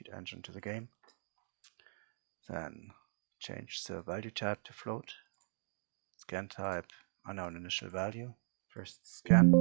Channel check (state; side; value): silent; left; digital silence